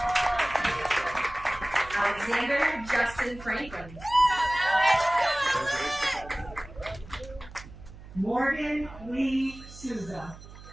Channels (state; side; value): noise; right; hum, 17 dB below the sound